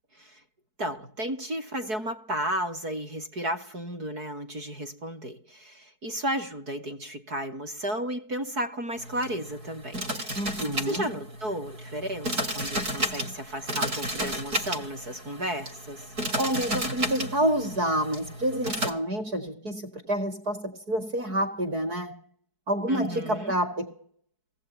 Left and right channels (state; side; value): late; left; 4.6 ms